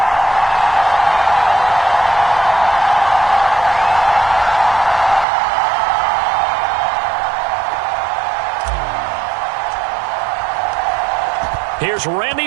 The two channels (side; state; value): left; drops out; at 5.2 s